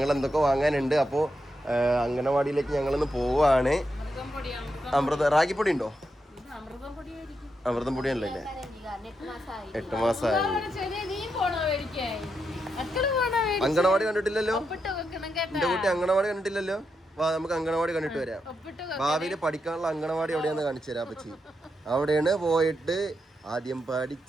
എന്തൊക്കെ വാങ്ങാനുണ്ട്. അപ്പോൾ അംഗനവാടിയിലേക്ക് ഞങ്ങളിന്ന് പോവാണ്. റാഗിപ്പൊടി ഉണ്ടോ? അമൃതം പൊടിയല്ലേ? 8 മാസമായി. അംഗനവാടി കണ്ടിട്ടില്ലല്ലോ എന്റെ കുട്ടി, അംഗനവാടി കണ്ടിട്ടില്ലല്ലോ. വാ, നമുക്ക് അംഗനവാടി കണ്ടിട്ട് വരാം. ഭാവിയിൽ പഠിക്കാനുള്ള അംഗനവാടി എവിടെയാന്ന് കാണിച്ചു തരാം പറ്റി. അവിടെയാണ് പോയിട്ട് ആദ്യം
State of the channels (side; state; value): both; normal; correlation 0.84